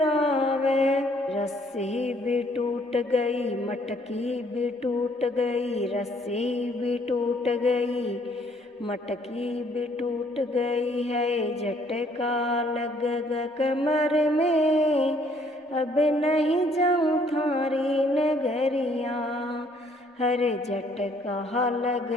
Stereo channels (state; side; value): normal; both; correlation 0.64